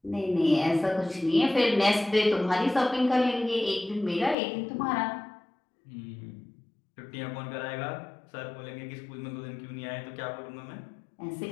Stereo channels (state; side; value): drops out; right; at 4.4 s